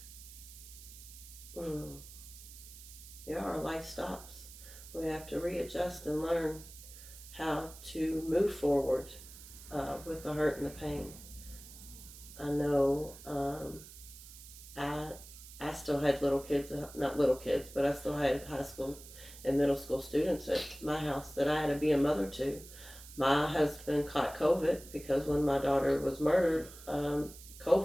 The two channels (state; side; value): noise; right; hiss, 16 dB below the sound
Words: Yeah, our life stops. We have to readjust and learn how to move forward with the hurt and the pain. I know I still had little kids, not little kids, but I still had high school and middle school students at my house that I had to be a mother to. My husband caught COVID because when my daughter was murdered,